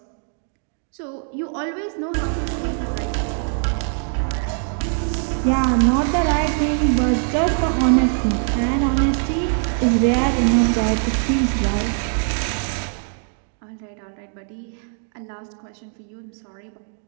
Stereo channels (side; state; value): left; silent; 58 dB below the other